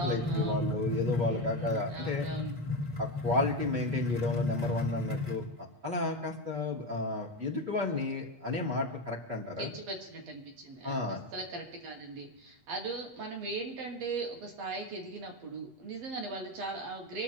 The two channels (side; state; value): left; late; 8.3 ms